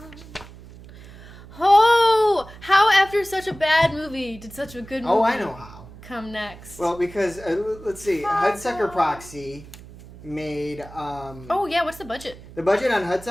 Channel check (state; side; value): noise; right; hum, 18 dB below the sound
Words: Oh, how after such a bad movie did such a good movie? Oh, I know how. Come next. Well, because let's see, Hudsucker Proxy made. Oh yeah, what's the budget? The budget on